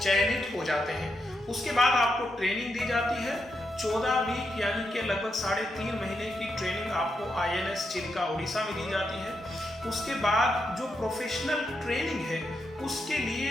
हो जाते हैं। उसके बाद आपको ट्रेनिंग दी जाती है 14 वीक यानी कि लगभग 3.5 महीने की ट्रेनिंग आपको INS चिल्का उड़ीसा में दी जाती है। उसके बाद जो प्रोफेशनल ट्रेनिंग है उसके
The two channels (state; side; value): normal; both; correlation 0.83